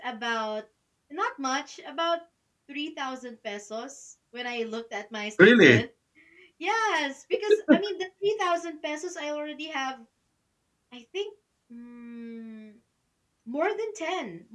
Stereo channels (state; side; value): identical; both; correlation 1.00